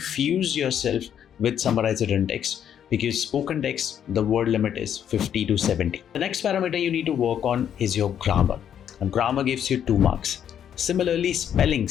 yourself with summarized written text, because spoken text, the word limit is 50 to 70. The next parameter you need to work on is your grammar. And grammar gives you 2 marks. Similarly,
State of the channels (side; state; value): right; quieter; 9.2 dB